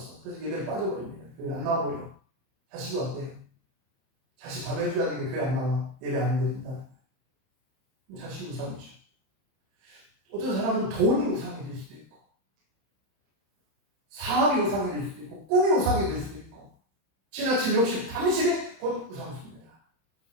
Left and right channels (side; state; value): left; late; 31 ms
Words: 그래서 예배를 빠져버립니다. 교회 안 나와버려. 자식이 왔대요. 자식 밥 해줘야 되는데 교회 안 나와. 예배 안 드린다. 자식이 우상이죠. 어떤 사람은 돈이 우상이 될 수도 있고, 사업이 우상이 될 수도 있고, 꿈이 우상이 될 수도 있고, 지나친 욕심, 탐심이 곧 우상수입니다.